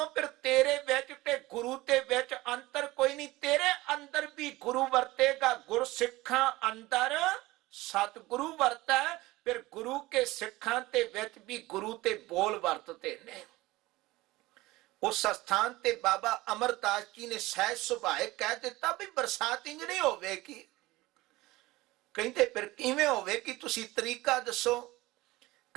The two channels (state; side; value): quieter; left; 19.4 dB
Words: फिर तेरे विच ते गुरु ते विच अंतर कोई नहीं। तेरे अंदर भी गुरु वरतेगा। गुर सिखा अंदर सतगुरु वरता है। फिर गुरु के सिखां ते विच भी गुरु ते बोल वरतते ने। उस स्थान ते बाबा अमरदास जी ने सहज सुभाए कह दिता भी बरसात इंज नहीं होवेगी। कहते फिर किवें होवेगी, तुसी तरीका दसो।